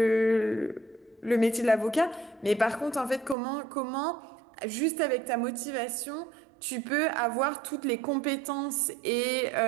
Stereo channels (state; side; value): drops out; left; at 3.4 s